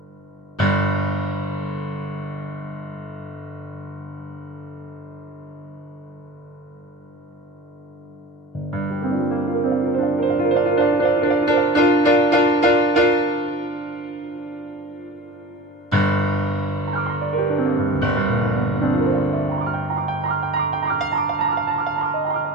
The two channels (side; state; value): both; normal; correlation 0.37